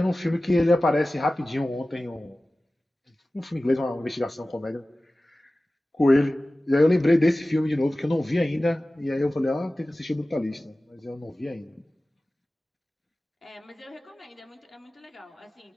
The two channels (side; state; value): both; normal; correlation 0.96